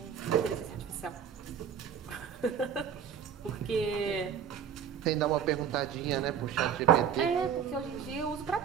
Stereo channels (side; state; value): left; quieter; 8.1 dB